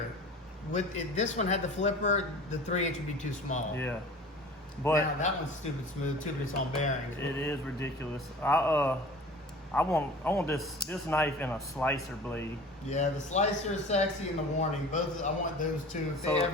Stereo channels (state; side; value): normal; both; correlation 0.41